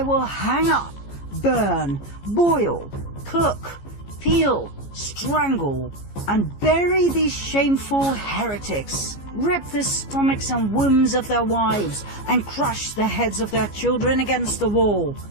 will hang up, burn, boil, cook, peel, strangle, and bury these shameful heretics, rip the stomachs and wombs of their wives, and crush the heads of their children against the wall,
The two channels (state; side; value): late; right; 15 ms